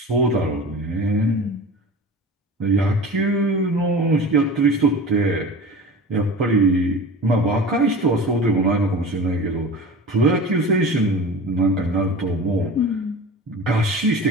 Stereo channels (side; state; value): both; normal; correlation 0.35